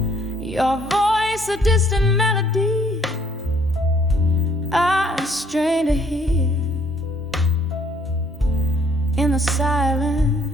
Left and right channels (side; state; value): both; normal; correlation 0.64